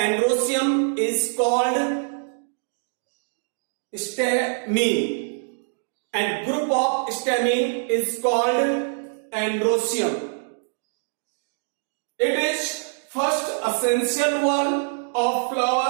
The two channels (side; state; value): left; silent; 62 dB below the other